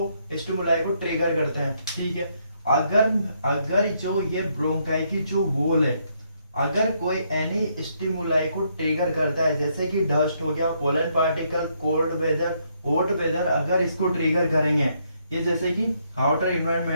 स्टिमुलाई को ट्रिगर करते हैं, ठीक है। अगर जो ये ब्रोंकाई की जो वॉल है, अगर कोई एनी स्टिमुलाई को ट्रिगर करता है, जैसे कि डस्ट हो गया, pollen particle, cold weather, hot weather, अगर इसको ट्रिगर करेंगे, ये जैसे कि आउटर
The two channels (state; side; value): inverted; both; correlation -0.73